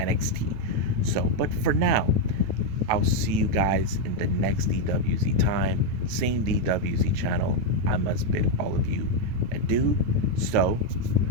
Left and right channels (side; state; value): left; late; 9.2 ms